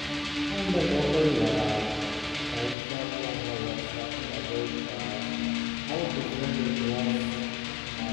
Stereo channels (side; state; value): right; drops out; at 2.8 s